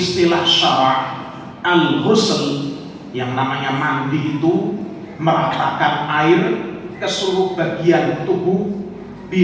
syara' al-ghusl, yang namanya mandi itu meratakan air ke seluruh bagian tubuh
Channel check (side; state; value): both; identical; correlation 1.00